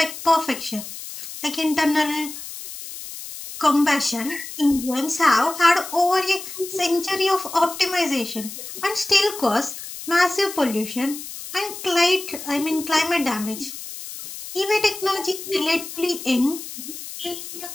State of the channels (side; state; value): left; noise; hiss, 11 dB below the sound